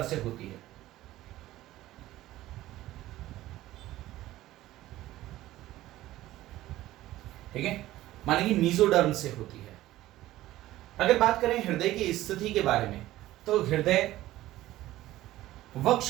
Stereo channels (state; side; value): quieter; left; 15.6 dB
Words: से होती है। ठीक है, माने कि मीजोडर्म से होती है। अगर बात करें हृदय की स्थिति के बारे में, तो हृदय